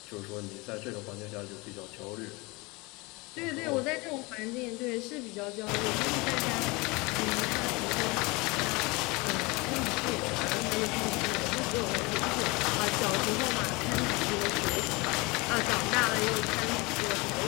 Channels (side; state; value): right; quieter; 25.4 dB